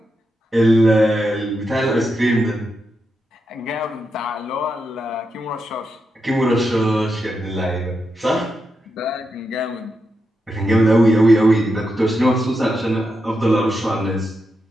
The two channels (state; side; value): normal; both; correlation 0.86